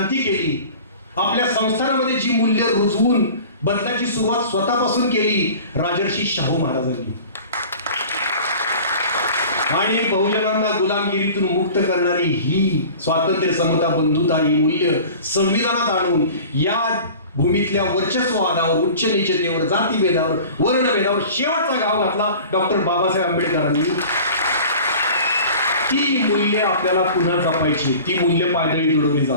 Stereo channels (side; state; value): both; inverted; correlation -0.42